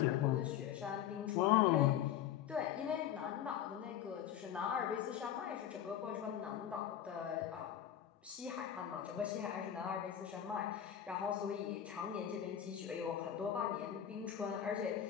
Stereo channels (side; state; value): right; quieter; 10.2 dB